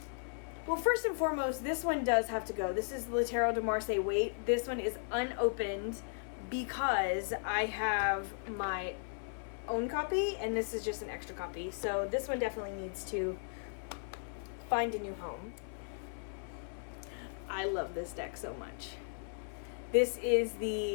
Well, first and foremost, this one does have to go. This is the Tarot de Marseille Wait. This one is unopened because I have my own copy, and this is just an extra copy. So this one definitely needs to find a new home. I love this deck so much. This is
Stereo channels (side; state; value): right; silent; 54 dB below the other